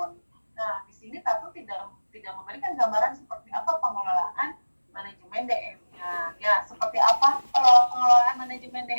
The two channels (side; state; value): both; inverted; correlation -1.00